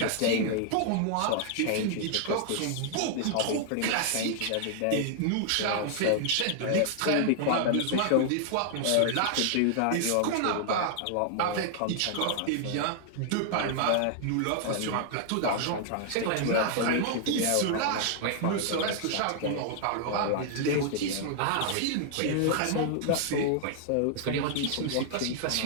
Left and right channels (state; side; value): different; both; correlation 0.00